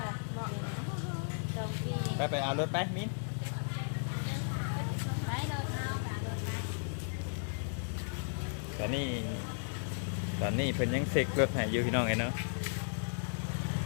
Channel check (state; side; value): silent; right; digital silence